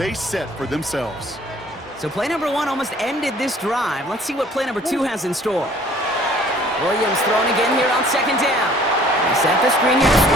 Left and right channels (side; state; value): both; normal; correlation 0.55